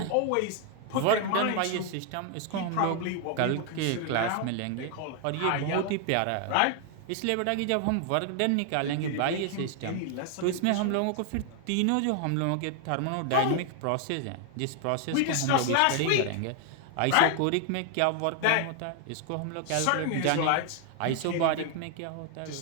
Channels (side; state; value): both; different; correlation 0.00